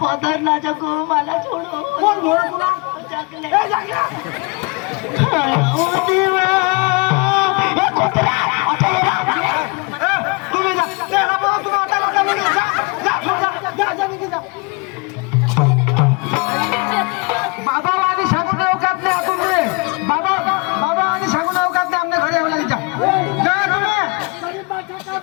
पदर ना जगू मला सोडू कोण घोडं तुला जगले ए, जागल्या. ओ देवा ए कुत्रा ए, तुम्ही जा त्याला बोला तुम्ही आता नका निघू. जा निघू जा. बाबा आणि सांगून अवकात नाही आपण पुढे. बाबा आणि सांगून अवकात नाही आमने घरी आम्हाला जा तुम्ही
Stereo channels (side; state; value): right; quieter; 30.0 dB